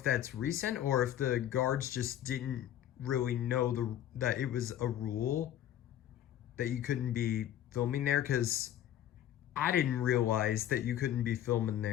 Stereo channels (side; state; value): right; quieter; 11.5 dB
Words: that's recent or if the guards just didn't really know that it was a rule that you couldn't be filming there, because I didn't realize that you couldn't be filming